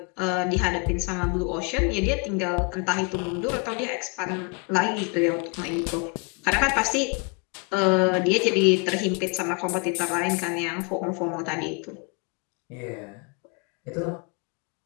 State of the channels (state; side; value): quieter; right; 34.5 dB